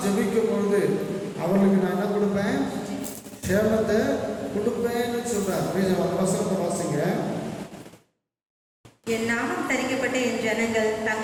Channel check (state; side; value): identical; both; correlation 1.00